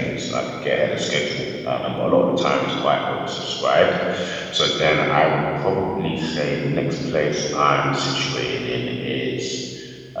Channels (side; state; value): both; identical; correlation 1.00